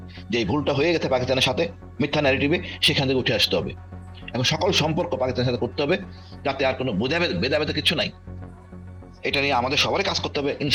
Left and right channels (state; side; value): identical; both; correlation 1.00